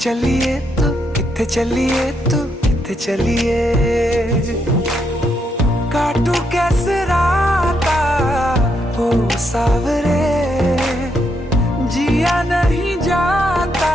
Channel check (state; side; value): normal; both; correlation 0.78